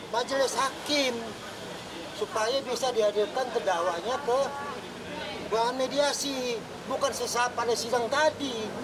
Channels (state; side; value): identical; both; correlation 1.00